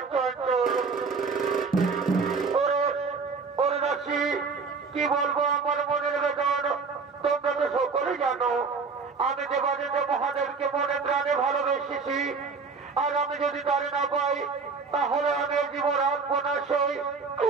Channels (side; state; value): left; quieter; 4.8 dB